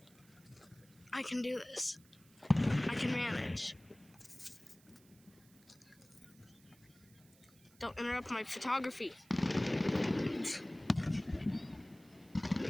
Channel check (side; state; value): right; noise; hiss, 27 dB below the sound